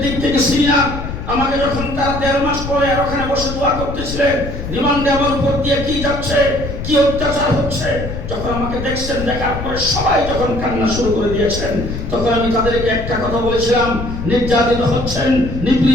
দিক থেকে সিনিয়র। আমাকে যখন তারা ১.৫ মাস পরে আর ওখানে বসে দোয়া করতেছিলেন, রিমান্ডে আমার উপর দিয়ে কি যাচ্ছে, কি অত্যাচার হচ্ছে, যখন আমাকে দেখছেন, দেখার পরে সবাই যখন কান্না শুরু করে দিয়েছেন, তখন আমি তাদেরকে একটা কথা বলেছিলাম, নির্যাতিত হচ্ছেন,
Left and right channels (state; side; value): noise; left; rumble, 7 dB below the sound